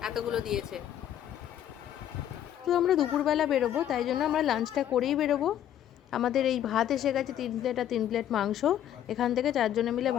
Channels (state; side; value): quieter; right; 10.9 dB